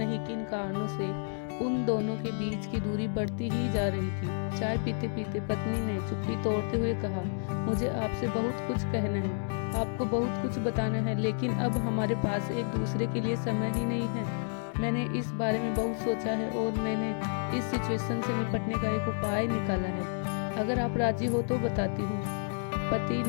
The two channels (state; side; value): silent; right; digital silence